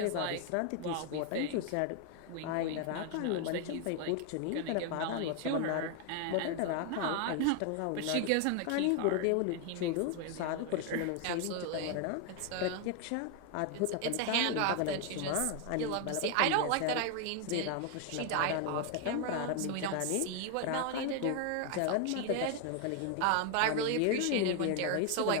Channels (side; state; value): both; different; correlation 0.01